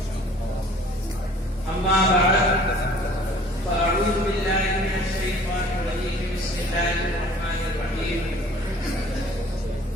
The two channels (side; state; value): both; normal; correlation 0.51